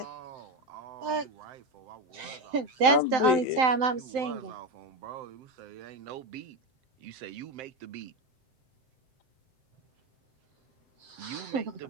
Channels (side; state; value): left; late; 7.7 ms